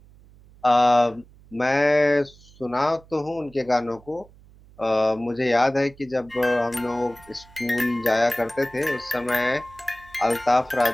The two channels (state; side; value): noise; right; hum, 25 dB below the sound